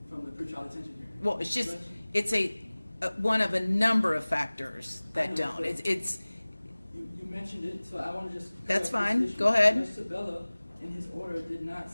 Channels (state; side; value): inverted; both; correlation -1.00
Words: from the pretrial detention hearing. Well, it's just, it's a one of a number of factors that don't. It's You mentioned it, so I want to just... That's fine. Go ahead. Judge Sabella, in his order, did not